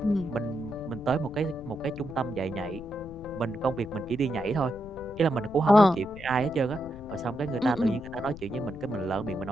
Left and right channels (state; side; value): noise; left; rumble, 15 dB below the sound